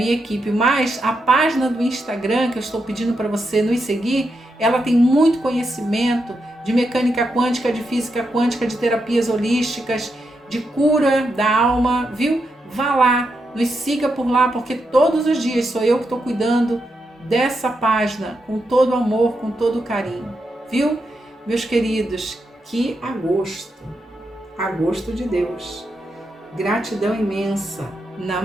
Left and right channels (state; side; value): normal; both; correlation 0.84